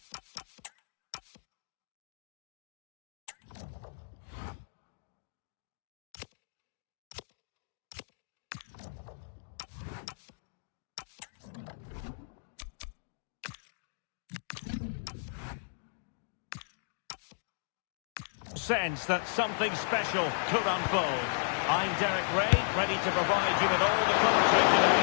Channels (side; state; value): right; silent; digital silence